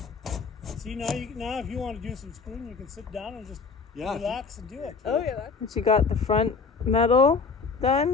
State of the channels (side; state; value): right; quieter; 4.9 dB